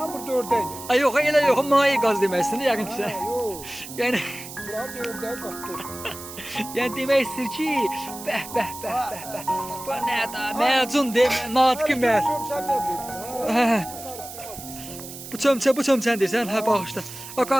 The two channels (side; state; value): right; noise; hiss, 13 dB below the sound